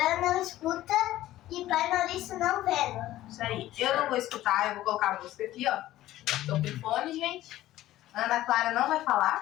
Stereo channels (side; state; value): right; quieter; 14.7 dB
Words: não escuta e pai Maurício não vendo. Isso aí. Eu não vou escutar, eu vou colocar a música aqui, ó. Tô com fone, gente. Ana Clara não vai